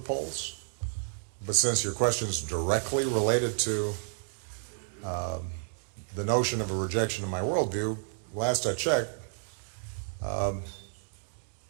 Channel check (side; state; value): left; silent; digital silence